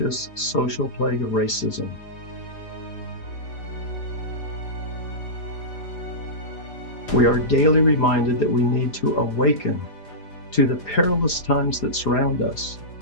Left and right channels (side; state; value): right; late; 4.9 ms